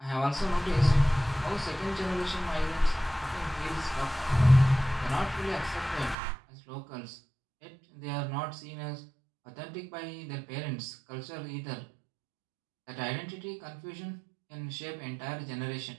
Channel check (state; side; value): drops out; left; at 6.2 s